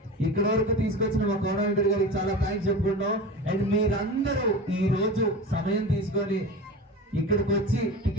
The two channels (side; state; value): both; normal; correlation 0.31